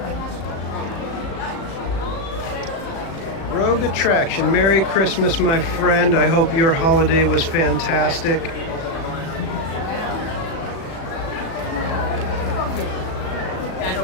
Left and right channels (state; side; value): late; right; 37 ms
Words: Rogue Attraction. Merry Christmas, my friend. I hope your holiday was fantastic.